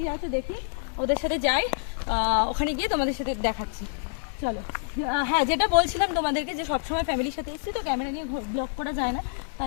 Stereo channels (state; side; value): silent; right; digital silence